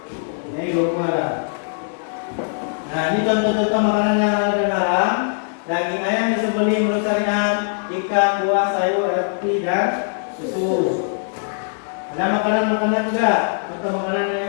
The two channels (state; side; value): silent; right; digital silence